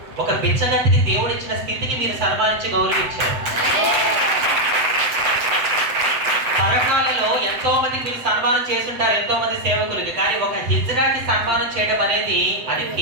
ఒక బిచ్చగతికి దేవుడు ఇచ్చిన స్థితికి మీరు సన్మానించి గౌరవించారు. తరకాలలో ఎంతో మందికి మీరు సన్మానం చేస్తుంటారు, ఎంతో మంది సేవకులకి. కానీ ఒక హిజ్రాకి సన్మానం చేయడం అనేది అది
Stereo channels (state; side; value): late; left; 8.0 ms